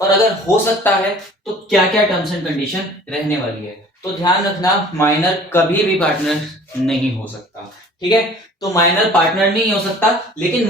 और अगर हो सकता है तो क्या क्या टर्म्स एंड कंडीशन रहने वाली है। तो ध्यान रखना, माइनर कभी भी पार्टनर नहीं हो सकता, ठीक है। तो माइनर पार्टनर नहीं हो सकता, लेकिन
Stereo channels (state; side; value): normal; both; correlation 0.48